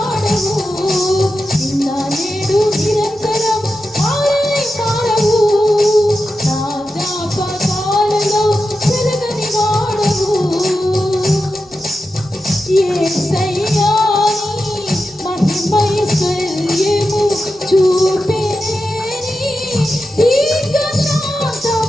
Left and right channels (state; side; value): normal; both; correlation 0.90